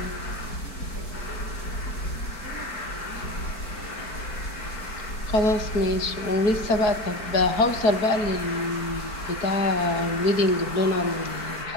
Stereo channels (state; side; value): late; right; 4.5 ms